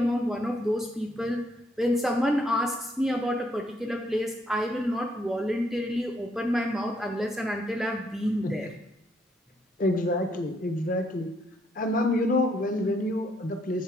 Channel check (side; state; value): both; normal; correlation 0.72